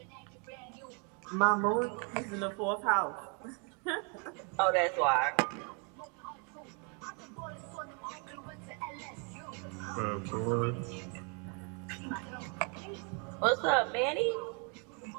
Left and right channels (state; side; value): quieter; left; 36.8 dB